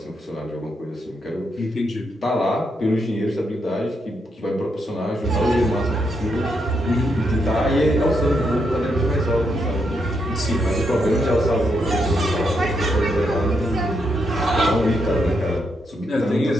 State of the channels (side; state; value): both; normal; correlation 0.80